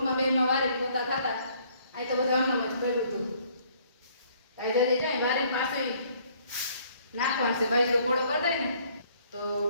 બેમાં વારી પોતા ખાતા। અહીં તો બધું આમનામ જ પડ્યું હતું। કાઈ જરી જાય વારી પાછું નાખવાનું છે, બાજરો કોળો કરી દે ને તો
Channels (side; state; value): both; inverted; correlation -0.62